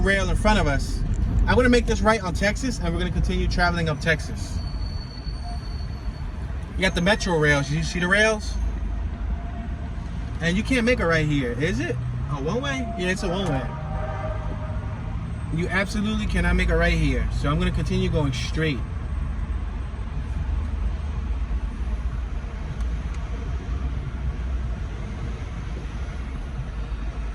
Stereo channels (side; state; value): both; identical; correlation 1.00